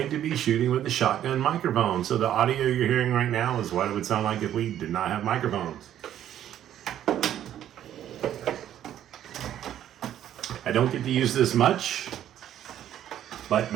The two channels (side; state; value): left; quieter; 11.1 dB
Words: to be shooting with the shotgun microphone. So the audio you're hearing right now is what it would sound like if we did not have microphones. I don't get to use this much, but